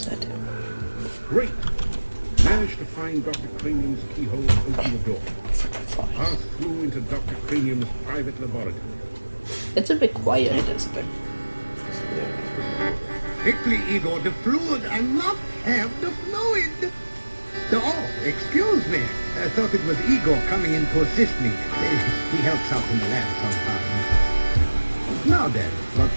that do? Great. Managed to find Dr. Cranium's keyhole and open the door. Pass through into Dr. Cranium's private laboratory. It's a bit quiet. It is a bit. Quickly, Igor, the fluid. I must have the fluid. Oh, excuse me. I thought it was Igor coming in to assist me. He helps out in the lab sometimes. Now then, what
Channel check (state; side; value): inverted; both; correlation -1.00